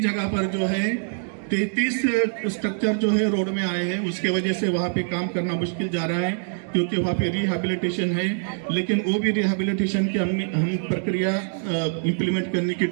जगह पर जो है 33 स्ट्रक्चर जो है रोड में आए हैं, उसके वजह से वहाँ पे काम करना मुश्किल जा रहा है, क्योंकि वहाँ पे रिहैबिलिटेशन है। लेकिन वो भी रिहैबिलिटेशन की हम प्रक्रिया इम्प्लीमेंट करने की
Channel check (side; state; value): left; silent; 62 dB below the other